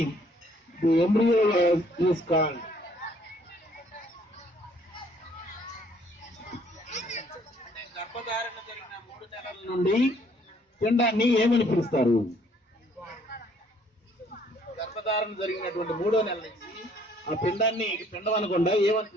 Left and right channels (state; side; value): normal; both; correlation 0.62